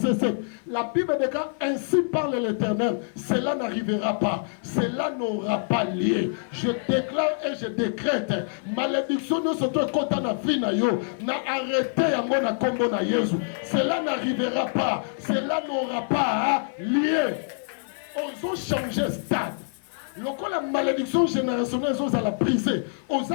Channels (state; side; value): silent; right; 61 dB below the other